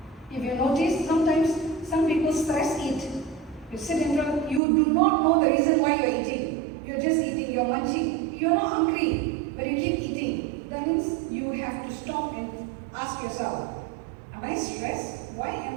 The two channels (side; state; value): left; drops out; at 4.6 s